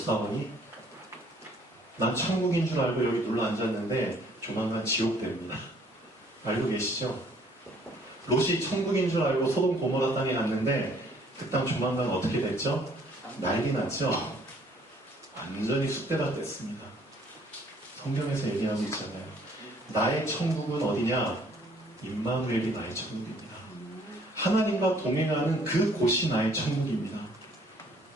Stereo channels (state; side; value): normal; both; correlation 0.60